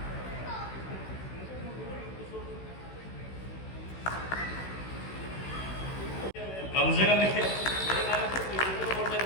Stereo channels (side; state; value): right; late; 16 ms